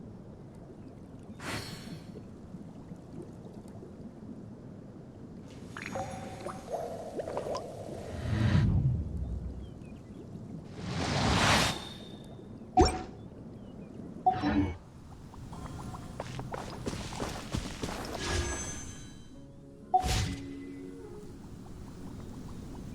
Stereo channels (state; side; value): identical; both; correlation 1.00